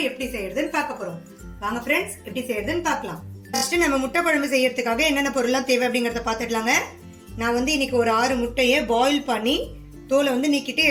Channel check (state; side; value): identical; both; correlation 1.00